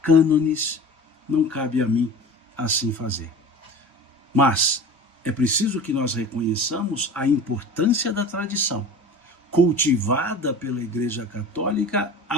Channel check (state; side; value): normal; both; correlation 0.37